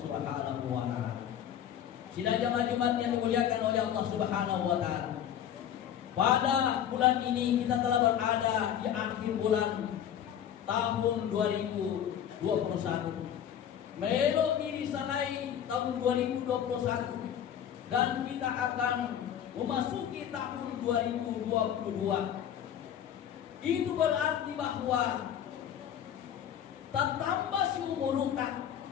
wa Ta'ala. Sidang jamaah Jumat yang dimuliakan oleh Allah Subhanahu wa Ta'ala. Pada bulan ini kita telah berada di akhir bulan tahun 2021. Melok diri salai tahun 2021 dan kita akan memasuki tahun 2022. Itu berarti bahwa tak tambah si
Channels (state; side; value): quieter; right; 9.8 dB